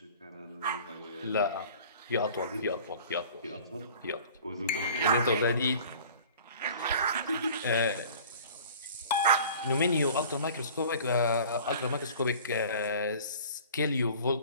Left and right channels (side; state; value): both; inverted; correlation -0.46